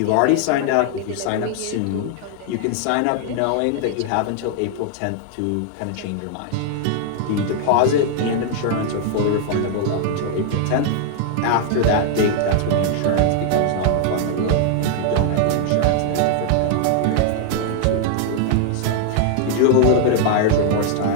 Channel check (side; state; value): both; different; correlation 0.00